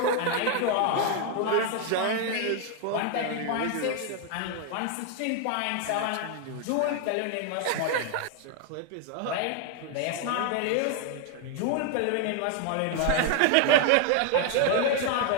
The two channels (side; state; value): both; different; correlation 0.01